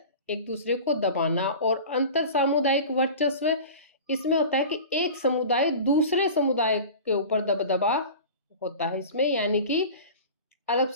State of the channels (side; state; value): both; inverted; correlation -0.36